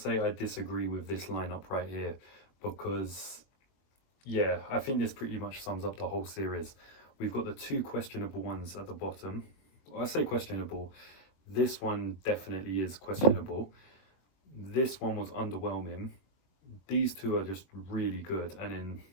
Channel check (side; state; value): right; late; 21 ms